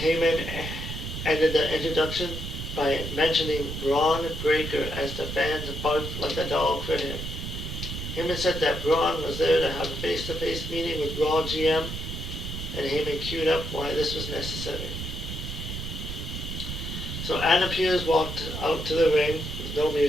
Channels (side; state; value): right; noise; rumble, 6 dB below the sound